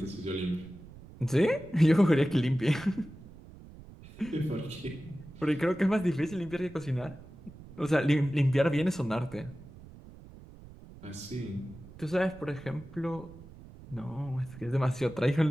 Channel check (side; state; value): right; noise; rumble, 18 dB below the sound